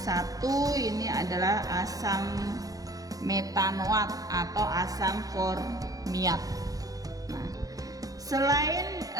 ini adalah asam metanoat atau asam formiat. Nah, selain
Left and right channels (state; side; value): late; left; 0.17 ms